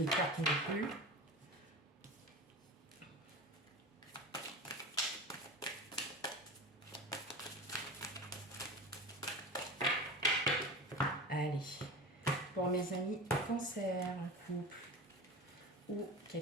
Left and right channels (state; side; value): normal; both; correlation 0.30